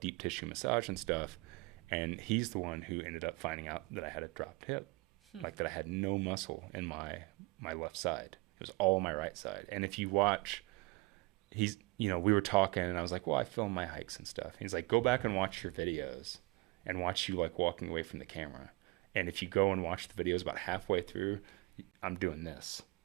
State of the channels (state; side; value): quieter; left; 24.3 dB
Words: deep tissue massage and stuff. And he's the one who ended up finding out that I had a dropped hip, like that I had no muscle in my left side. It was all my right side. And if you watch, we were talking, and I was like, well, I film my hikes and stuff. He's like, go back and watch your videos and watch you like walking away from the camera. And if you go and watch the videos about halfway through, I'm doing this.